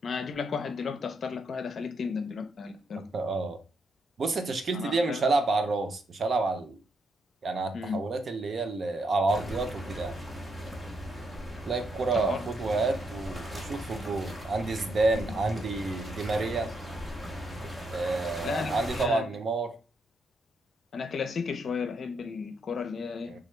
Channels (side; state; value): both; normal; correlation 0.78